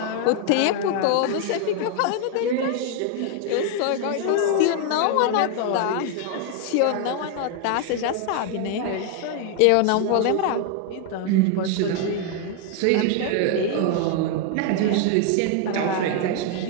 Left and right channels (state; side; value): different; both; correlation 0.00